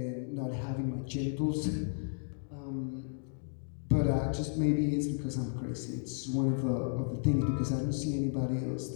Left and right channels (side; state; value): right; silent; digital silence